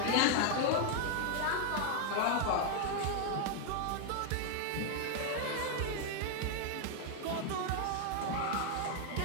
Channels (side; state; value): both; different; correlation 0.00